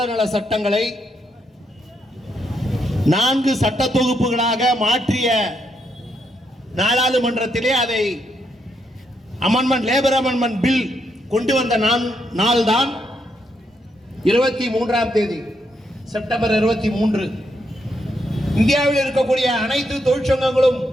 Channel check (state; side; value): normal; both; correlation 0.78